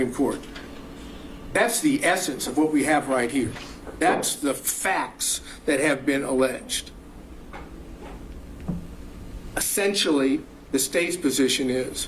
Court. That's the essence of what we have right here. That's the facts that have been alleged. Essentially, the state's position is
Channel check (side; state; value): both; identical; correlation 1.00